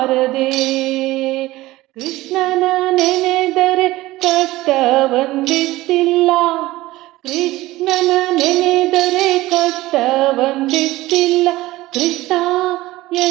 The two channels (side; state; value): left; quieter; 17.9 dB